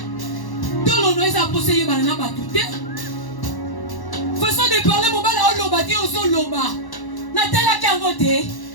Tout le monde a posé yé banana batute. Façon de parler mobali a loba ti ozo loba. Natala kangote,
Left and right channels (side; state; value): right; late; 1.1 ms